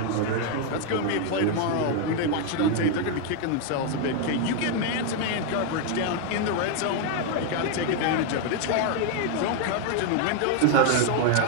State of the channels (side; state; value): both; different; correlation 0.01